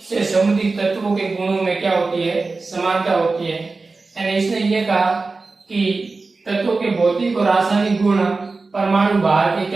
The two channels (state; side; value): quieter; left; 3.8 dB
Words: से संबंधित तत्वों के गुणों में क्या होती है, समानता होती है। यानी इसने ये कहा कि तत्वों के भौतिक और रासायनिक गुण परमाणु भार के